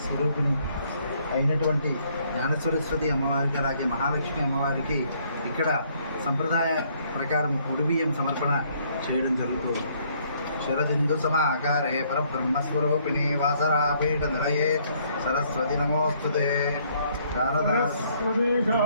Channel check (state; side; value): inverted; both; correlation -0.66